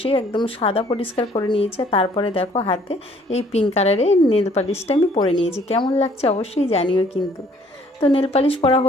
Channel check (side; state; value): both; normal; correlation 0.60